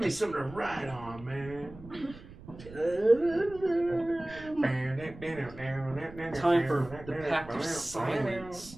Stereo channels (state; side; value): noise; right; rumble, 17 dB below the sound